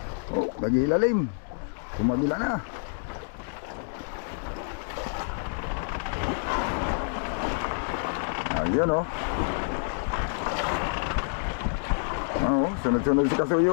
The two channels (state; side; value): silent; right; digital silence